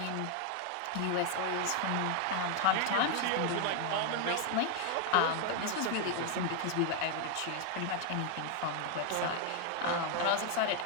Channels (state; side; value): different; both; correlation 0.00